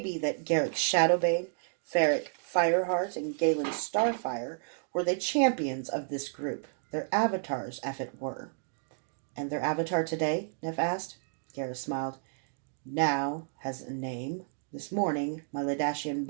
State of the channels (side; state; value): left; silent; digital silence